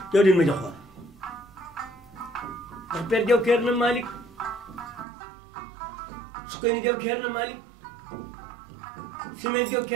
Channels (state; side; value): drops out; left; at 5.1 s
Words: jaw din ma joxoon ndax Père Jaw keer na Malick su koy ni Jaw keer na Malick Simeer Jaw